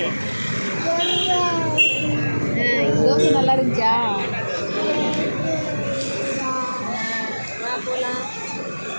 தோசை நல்லா இருந்துச்சா? போகலாம்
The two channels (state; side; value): inverted; both; correlation -1.00